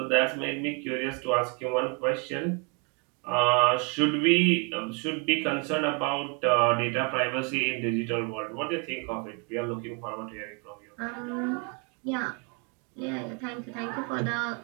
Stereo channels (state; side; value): quieter; left; 35.2 dB